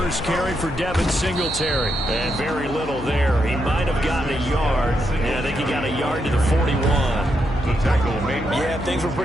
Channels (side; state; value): left; noise; hum, 11 dB below the sound